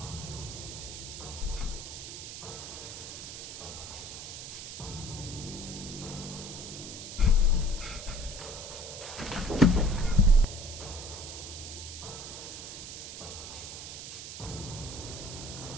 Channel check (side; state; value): right; noise; hiss, 9 dB below the sound